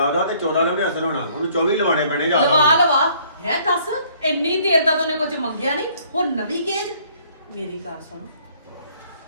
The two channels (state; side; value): inverted; both; correlation -0.61